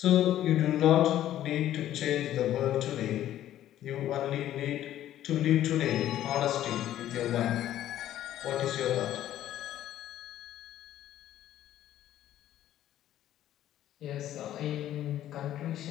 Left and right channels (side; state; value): right; quieter; 12.5 dB